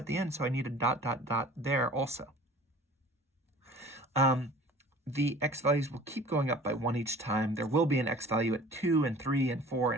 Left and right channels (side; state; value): both; normal; correlation 0.46